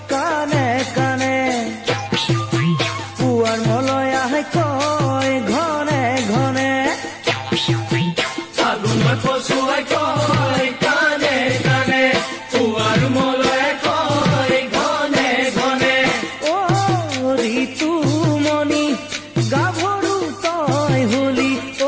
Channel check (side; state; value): both; identical; correlation 1.00